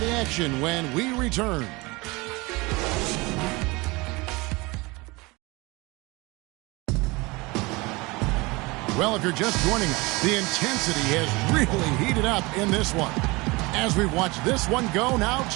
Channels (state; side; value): quieter; left; 24.2 dB